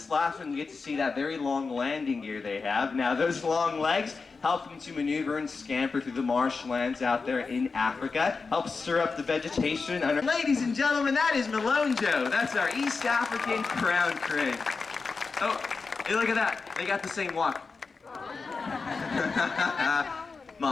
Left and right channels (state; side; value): quieter; right; 4.5 dB